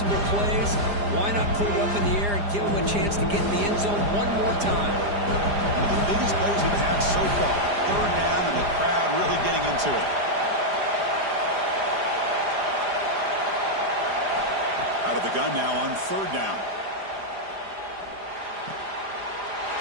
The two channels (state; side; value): late; left; 4.9 ms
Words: plays. Why not put it up in the air and give him a chance to get in the end zone one more time? One of the biggest plays we've had so far. Third down and the crowd really getting into it. Out of the gun now on third down.